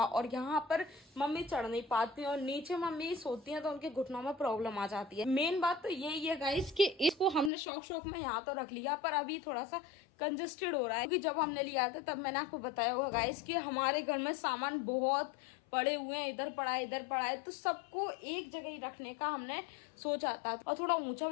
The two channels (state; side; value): drops out; right; at 7.5 s